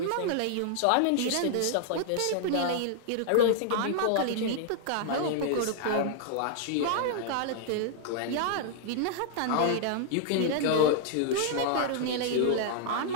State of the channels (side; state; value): both; different; correlation -0.01